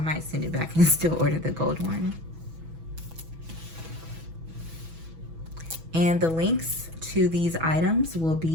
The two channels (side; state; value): left; late; 6.1 ms